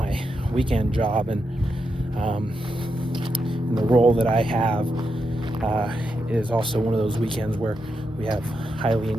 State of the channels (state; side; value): normal; both; correlation 0.85